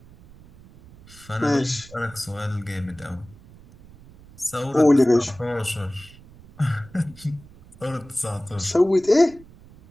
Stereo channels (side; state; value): right; noise; rumble, 23 dB below the sound